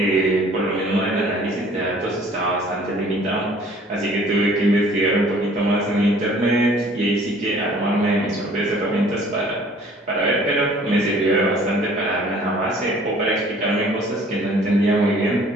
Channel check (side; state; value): both; normal; correlation 0.53